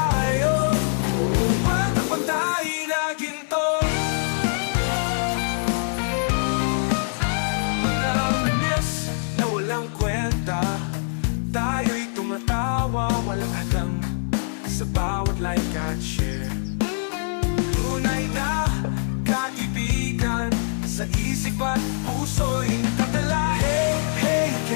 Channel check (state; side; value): silent; right; 56 dB below the other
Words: walang pantay na ginto. Mga manis na walang kwenta, tayo'y tumatawa, walang hadlang sa bawat like at share. Tunay na kaibigan, sa isip at puso'y nakatala. Hey, hey,